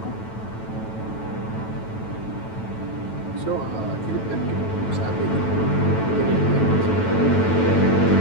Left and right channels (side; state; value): right; late; 9.1 ms